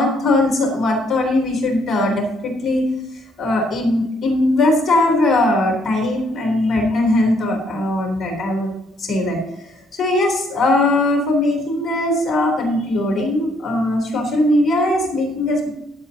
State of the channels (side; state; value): both; normal; correlation 0.69